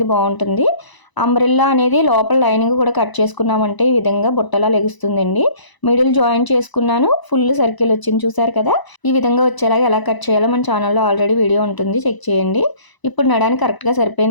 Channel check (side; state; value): right; late; 1.0 ms